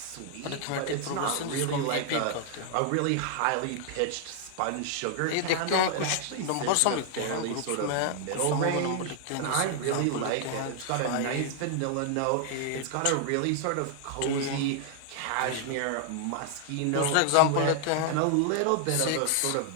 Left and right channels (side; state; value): both; different; correlation 0.00